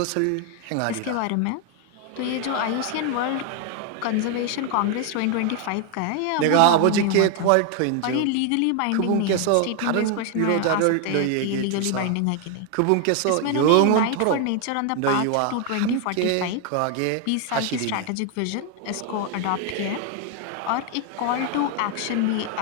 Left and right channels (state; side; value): different; both; correlation 0.01